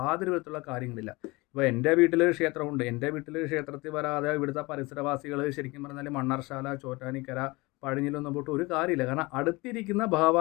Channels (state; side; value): quieter; right; 23.6 dB